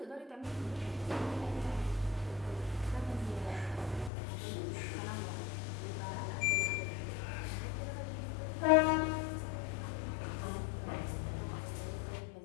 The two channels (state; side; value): drops out; right; at 4.1 s